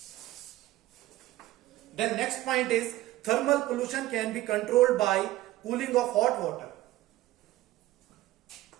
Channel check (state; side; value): quieter; left; 16.2 dB